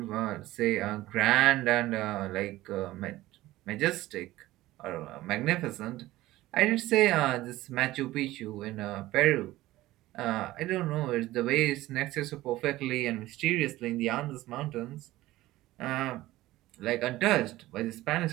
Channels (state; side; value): quieter; left; 16.8 dB